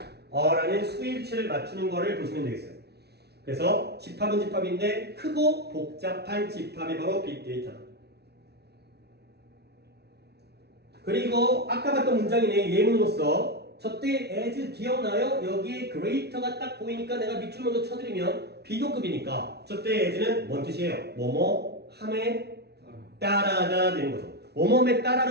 라는 수일치를 맞추는 거를 보시면 되겠어요. 그래서 집합은 집합인데 크고 복잡한 집합이 바로 빅데이터다. 그리고 아까 봤던 문장이네. 예문으로서 저때 as 기억나요? 여기에 greater가 딱 보이니까 내가 밑줄 먼저 쳐드리면 비교급이니까 저때 as는 뭔 뜻이에요? 뭐뭐 함에 따라가 되는 거죠. 뭐뭐에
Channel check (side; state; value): left; late; 0.48 ms